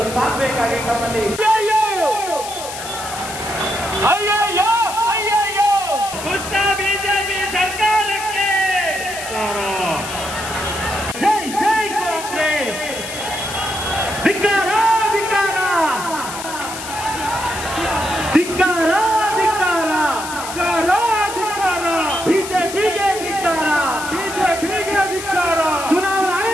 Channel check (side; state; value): left; noise; hiss, 10 dB below the sound